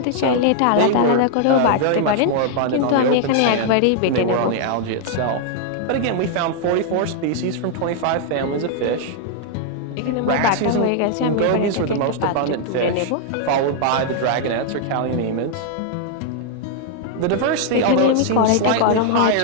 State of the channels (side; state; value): both; different; correlation 0.00